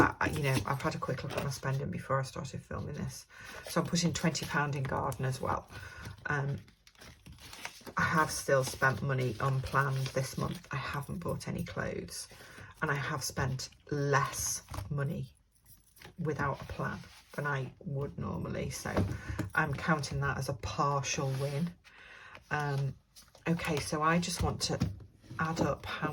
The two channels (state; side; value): identical; both; correlation 1.00